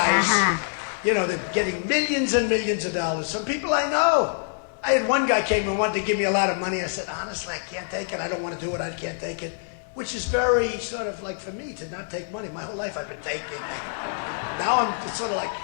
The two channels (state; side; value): silent; right; digital silence